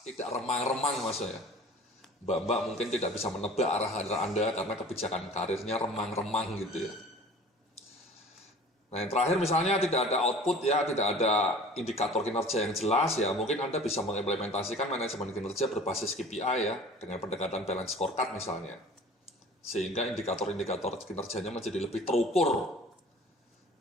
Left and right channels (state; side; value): normal; both; correlation 0.44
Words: tidak remang-remang mas ya. Mbak-mbak mungkin tidak bisa menebak arah Anda karena kebijakan karirnya remang-remang gitu ya. Nah yang terakhir misalnya tidak ada output ya, tidak ada indikator kinerja yang jelas ya, mungkin Anda bisa mengimplementasikan manajemen kinerja berbasis KPI ya, dengan pendekatan balance scorecard misalnya. Sehingga indikator-indikator kinerjanya menjadi lebih terukur.